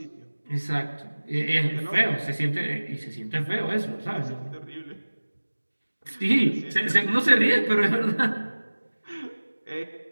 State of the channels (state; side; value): inverted; both; correlation -1.00